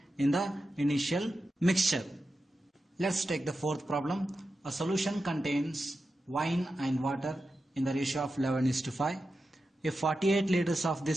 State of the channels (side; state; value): both; normal; correlation 0.91